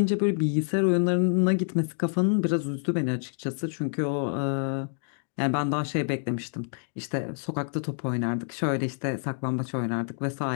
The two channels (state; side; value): silent; right; digital silence